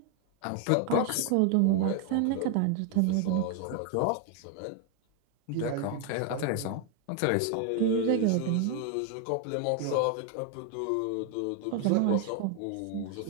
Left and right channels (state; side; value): different; both; correlation 0.01